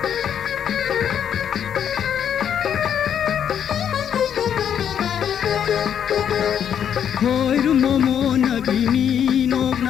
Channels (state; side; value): quieter; right; 8.8 dB